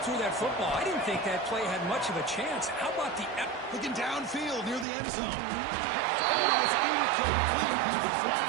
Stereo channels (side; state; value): left; drops out; at 4.9 s